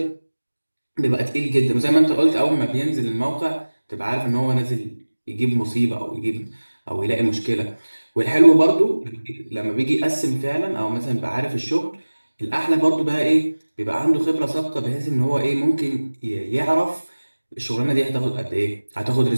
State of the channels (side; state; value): both; inverted; correlation -1.00